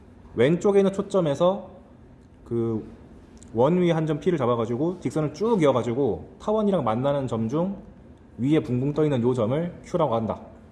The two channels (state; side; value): identical; both; correlation 1.00